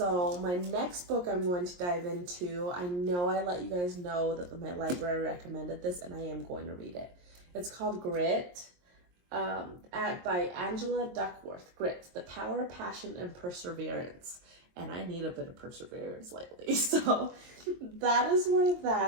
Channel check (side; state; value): left; late; 23 ms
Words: my next book I'm going to dive into, I know I let you guys know that my library recommended this, and I am going to read it. It's called Grit, by Angela Duckworth. Grit, The Power, Passion, and Perseverance. And I need a bit of perseverance lately. So that is where